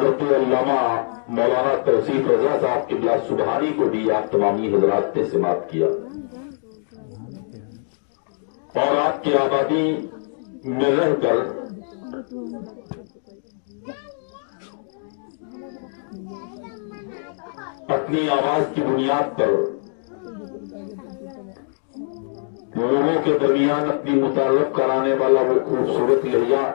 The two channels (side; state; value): right; silent; digital silence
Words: अल्लामा मौलाना तौसीफ रजा साहब क़िबला सुबहानी को भी आप तमामी हज़रात ने से बात किया और आपके आबादी में रहकर अपनी आवाज की बुनियाद पर लोगों के दरमियान अपनी मुतारफ कराने वाला वो खूबसूरत लहजा